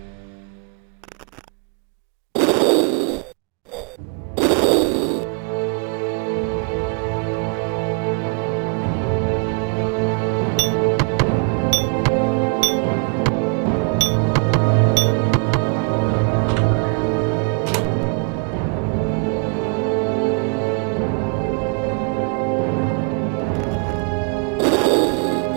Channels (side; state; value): left; quieter; 38.4 dB